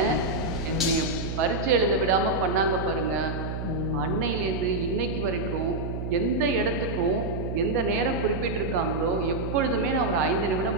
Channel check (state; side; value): noise; right; hum, 5 dB below the sound